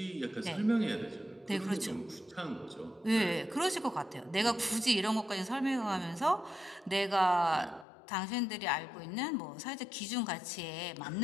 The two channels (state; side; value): drops out; right; at 7.9 s